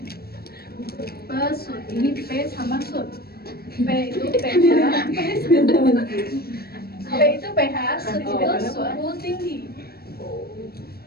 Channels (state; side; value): late; right; 0.45 ms